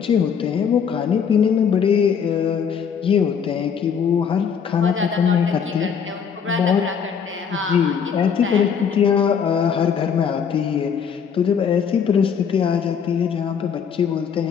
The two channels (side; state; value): right; quieter; 7.1 dB